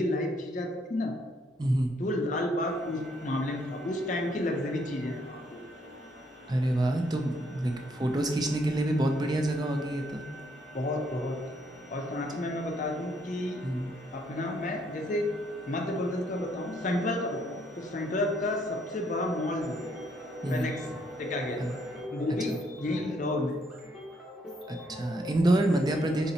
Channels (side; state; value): both; normal; correlation 0.71